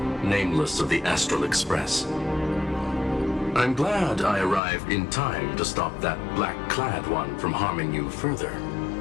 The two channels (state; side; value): drops out; right; at 4.6 s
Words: nameless of the Astral Express. I'm glad I arrived in time to stop that black-clad one from harming you further.